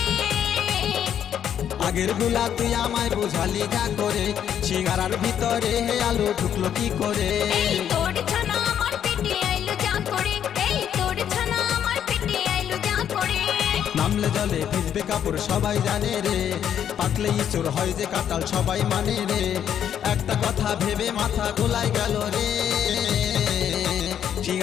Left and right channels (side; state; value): right; quieter; 9.4 dB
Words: আগের গুলা তুই আমায় বোঝালি যা করে, সিঙ্গারার ভিতরে হে আলু ঢুকলো কি করে? এই তোর ছানা আমার পেটে আইলো যা করে, এই তোর ছানা আমার পেটে আইলো যা করে। নামলে জলে ভিজবে কাপড় সবাই জানে রে, পাকলেই চোর হয় যে কাটাল সবাই মানে রে। একটা কথা ভেবে মাথা গোলায় গেল রে,